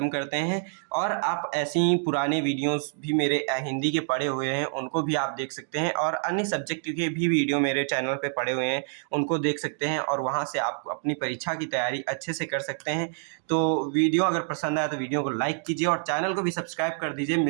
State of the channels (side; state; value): left; silent; digital silence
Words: करते हैं, और आप ऐसे ही पुराने वीडियोस भी मेरे हिंदी के पड़े हुए हैं उनको भी आप देख सकते हैं, और अन्य सब्जेक्ट के भी वीडियो मेरे चैनल पे पड़े हुए हैं उनको देख सकते हैं, और वहाँ से आप अपनी परीक्षा की तैयारी अच्छे से कर सकते हैं। तो वीडियो अगर पसंद आया तो वीडियो को लाइक कीजिए और चैनल को भी सब्सक्राइब कर दीजिए।